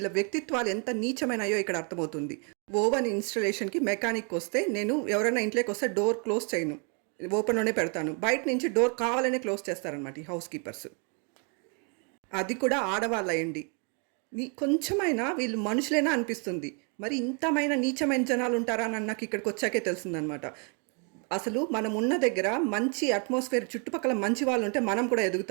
వ్యక్తిత్వాలు ఎంత నీచమైనాయో ఇక్కడ అర్థమవుతుంది. ఓవెన్ ఇన్స్టలేషన్కి మెకానిక్ వస్తే నేను ఎవరైనా ఇంట్లోకి వస్తే డోర్ క్లోజ్ చేయను, ఓపెన్లోనే పెడతాను. బయట నుంచి డోర్ కావాలనే క్లోజ్ చేస్తారనమాట ఈ హౌస్ కీపర్స్. అది కూడా ఆడవాళ్ళయండి. కొంచెమైనా వీళ్ళు మనుషులేనా అనిపిస్తుంది. మరి ఇంతమైన నీచమైన జనాలు ఉంటారా అని నాకు ఇక్కడికి వచ్చాకే తెలిసిందనమాట. అసలు మనం ఉన్న దగ్గర మంచి అట్మాస్ఫియర్, చుట్టుపక్కల మంచి వాళ్ళు ఉంటే మనం కూడా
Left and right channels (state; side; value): quieter; left; 37.5 dB